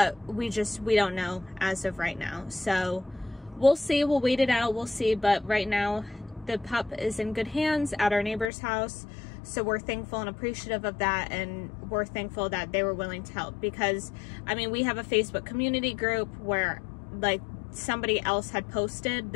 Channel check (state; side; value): drops out; right; at 8.5 s